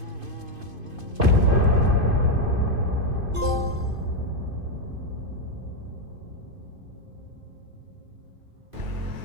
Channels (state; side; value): late; left; 2.5 ms